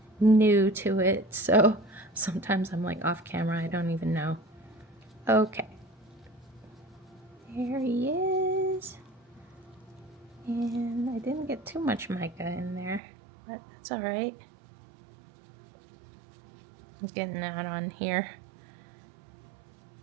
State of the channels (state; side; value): drops out; left; at 13.0 s